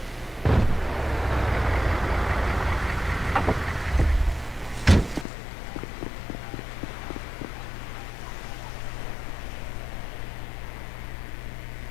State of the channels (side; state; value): right; drops out; at 5.2 s